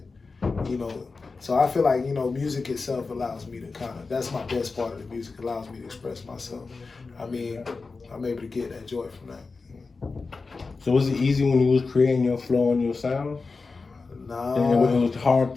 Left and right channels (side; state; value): right; quieter; 4.2 dB